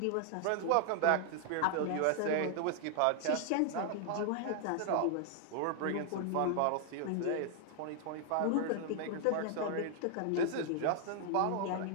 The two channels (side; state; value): both; different; correlation 0.00